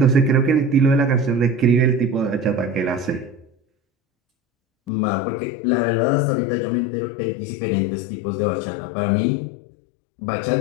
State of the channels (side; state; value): right; drops out; at 4.9 s